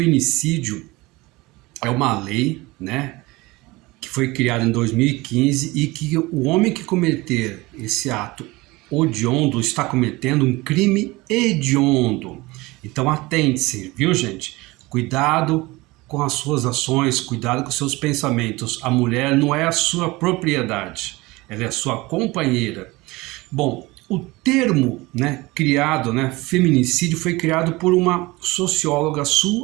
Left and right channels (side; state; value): left; quieter; 21.7 dB